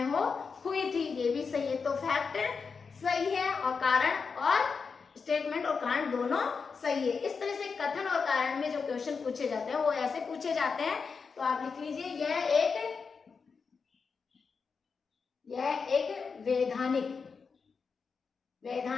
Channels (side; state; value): right; quieter; 5.3 dB